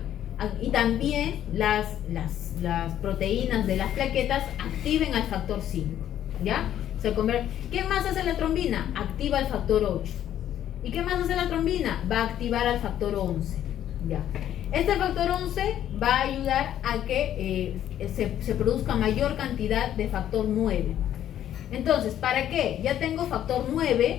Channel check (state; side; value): quieter; right; 11.1 dB